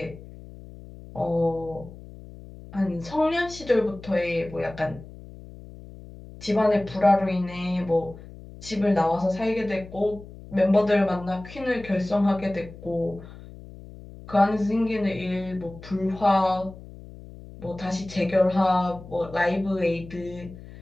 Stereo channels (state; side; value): noise; left; hum, 17 dB below the sound